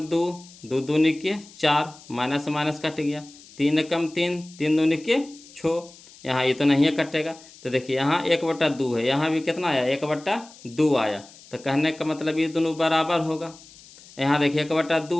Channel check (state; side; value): noise; left; hiss, 22 dB below the sound